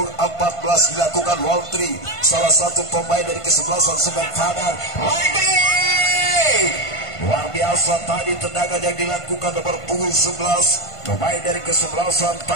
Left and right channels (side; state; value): right; late; 1.5 ms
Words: 14 dilakukan Waltri, salah satu pemain dari kesebelasan Semen Padang. Lagi luar biasa tadi tendangan yang dilakukan nomor punggung 11 pemain dari kesebelasan